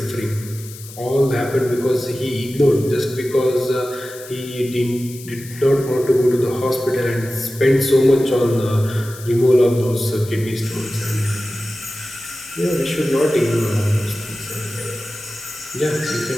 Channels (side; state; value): left; noise; hiss, 16 dB below the sound